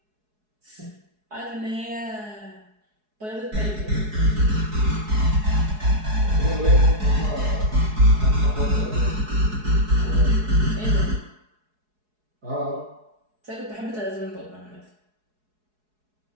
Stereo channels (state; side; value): late; left; 4.7 ms